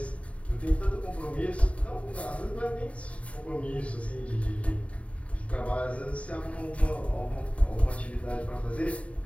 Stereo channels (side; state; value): right; late; 0.064 ms